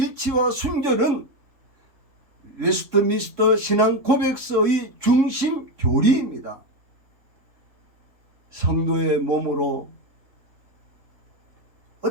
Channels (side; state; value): left; late; 3.6 ms